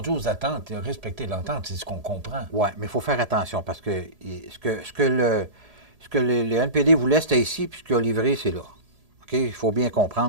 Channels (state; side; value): late; left; 1.8 ms